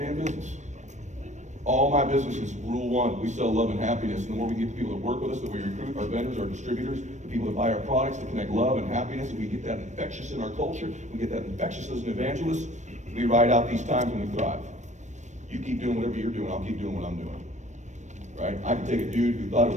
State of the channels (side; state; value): left; late; 0.34 ms